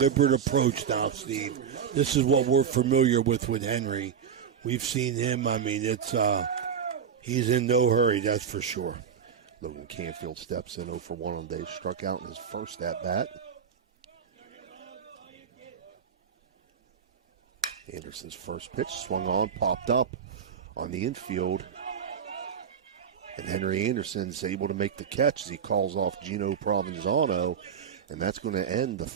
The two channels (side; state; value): left; quieter; 7.5 dB